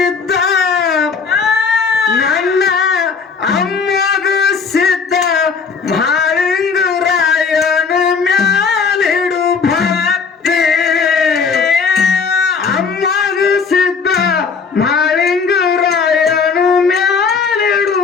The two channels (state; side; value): quieter; right; 5.4 dB